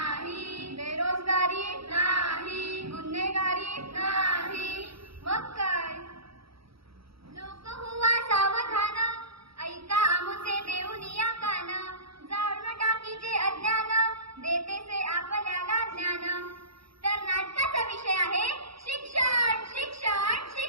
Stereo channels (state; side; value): late; left; 0.76 ms